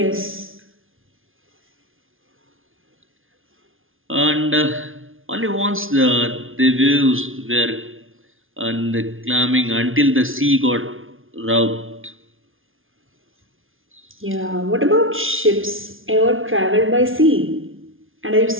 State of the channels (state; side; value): late; left; 0.59 ms